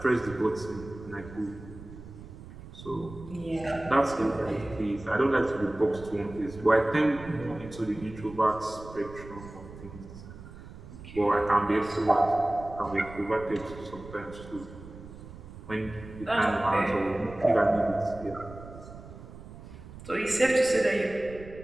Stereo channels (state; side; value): noise; right; rumble, 15 dB below the sound